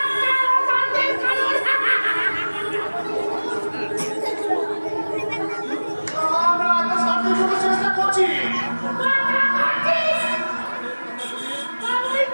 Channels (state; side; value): inverted; both; correlation -1.00